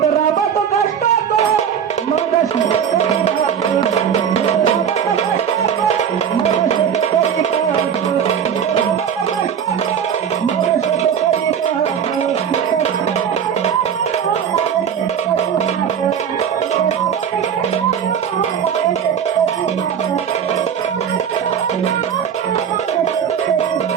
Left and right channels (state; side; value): quieter; left; 8.1 dB